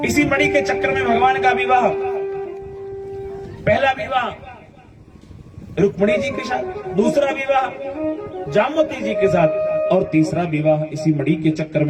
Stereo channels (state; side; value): identical; both; correlation 1.00